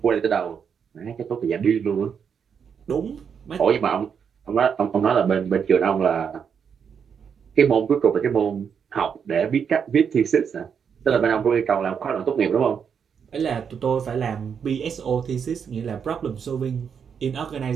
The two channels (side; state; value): left; quieter; 7.0 dB